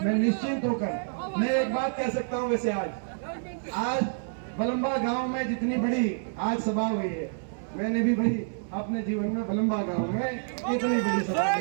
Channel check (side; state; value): left; silent; digital silence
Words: मैं निश्चिंत होकर मैं एक बात कह सकता हूँ। वैसे आज बलम्बा गांव में जितनी बड़ी आज सभा हुई है, मैंने भी भाई अपने जीवन में बलम्बा गांव में इतनी बड़ी सभा